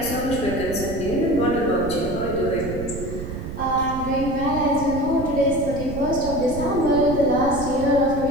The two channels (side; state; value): right; noise; rumble, 8 dB below the sound